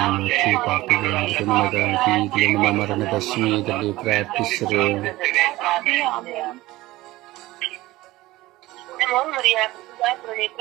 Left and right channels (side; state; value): left; quieter; 18.1 dB